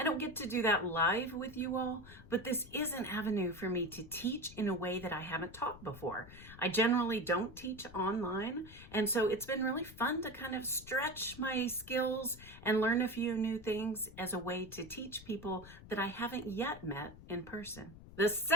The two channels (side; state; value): left; noise; rumble, 17 dB below the sound